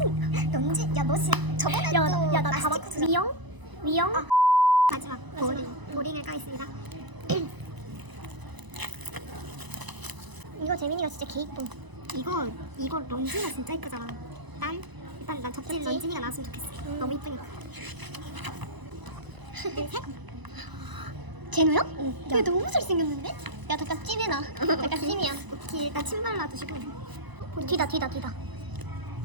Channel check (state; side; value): late; left; 1.0 ms